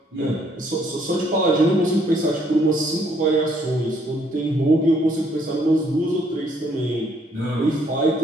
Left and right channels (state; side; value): normal; both; correlation 0.67